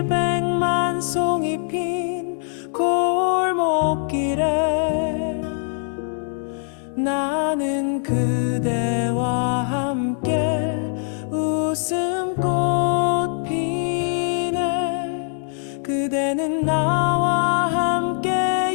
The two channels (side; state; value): right; silent; 62 dB below the other